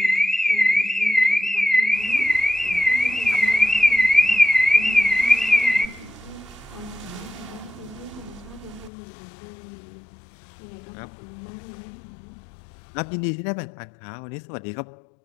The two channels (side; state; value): right; drops out; at 8.9 s